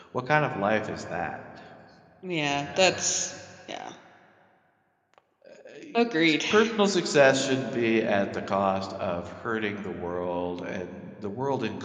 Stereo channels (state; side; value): identical; both; correlation 1.00